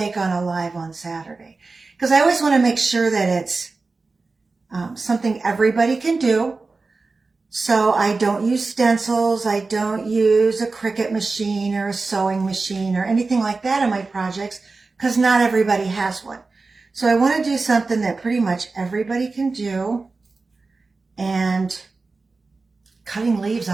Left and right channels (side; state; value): left; quieter; 3.9 dB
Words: on a live on Saturday, because I always want to make sure that it's something everybody can do. So I don't use stencils, I don't use a Cricut machine or a sewing machine or anything like that in my projects, because not everybody has one. So I want to do something that pretty much everybody can do, and cutting leaves